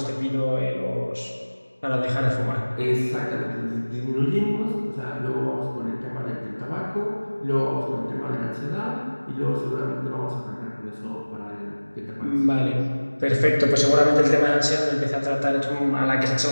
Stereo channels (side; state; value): both; inverted; correlation -1.00